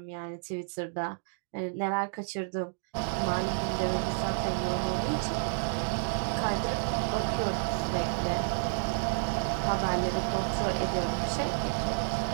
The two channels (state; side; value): silent; left; digital silence